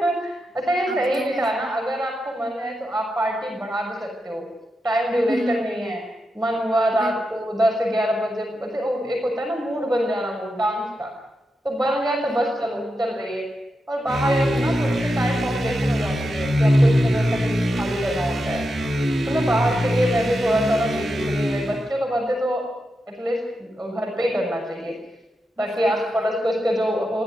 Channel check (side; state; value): both; normal; correlation 0.87